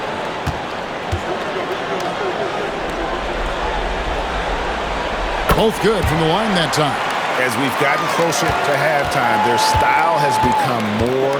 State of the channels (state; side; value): identical; both; correlation 1.00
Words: Both good from the line that time. As we've gotten closer to halftime, their style has become